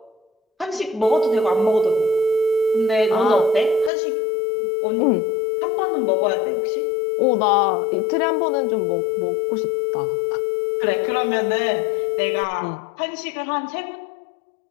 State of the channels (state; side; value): drops out; right; at 3.9 s